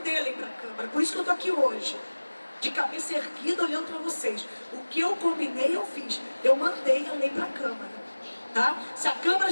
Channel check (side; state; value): both; inverted; correlation -1.00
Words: a lei para a Câmara, por isso que eu estou aqui hoje, de cabeça erguida, olhando para vocês. O que eu combinei, eu fiz, eu mandei a lei para a Câmara, tá? Se a Câmara